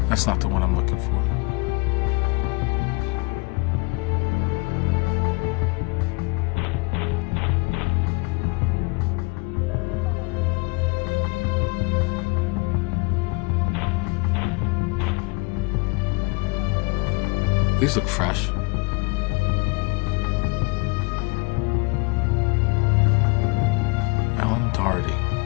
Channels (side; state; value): right; quieter; 29.0 dB